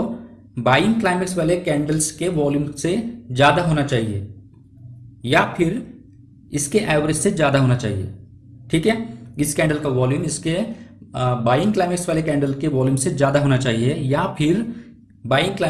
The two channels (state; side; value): identical; both; correlation 1.00